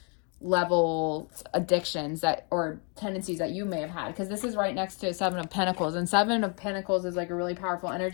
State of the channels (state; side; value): quieter; right; 37.0 dB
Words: level addictions or tendencies that you may have had, because this is right next to Seven of Pentacles, and Seven of Pentacles is like a really powerful